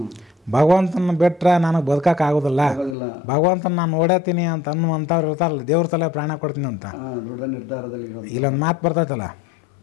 ಭಗವಂತನ ಬಿಟ್ರೆ ನನಗೆ ಬದುಕಕ್ಕೆ ಆಗೋದಿಲ್ಲ, ಆಗೋದಿಲ್ಲ. ಭಗವಂತನ ನಾನು ನೋಡತ್ತೀನಿ ಅಂತ ಅನ್ನುವಂಥವ್ರು ಇರ್ತಾರಲ್ಲ, ದೇವ್ರ ಸಲ ಪ್ರಾಣ ಕೊಡ್ತೀನಿ ಅಂತ. ದೃಢ ನಿರ್ಧಾರದಲ್ಲಿ ಇರೋದು. ಇಲ್ಲೊಂದು ಮಾತು ಬರ್ತೈತಲ್ಲ,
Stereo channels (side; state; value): right; drops out; at 3.0 s